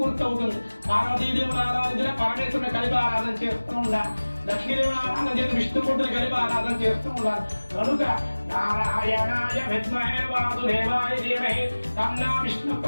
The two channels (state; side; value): inverted; both; correlation -1.00